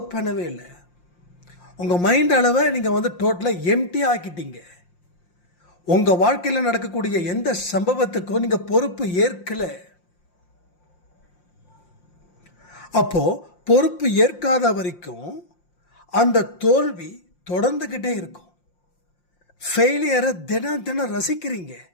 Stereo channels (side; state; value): right; late; 5.7 ms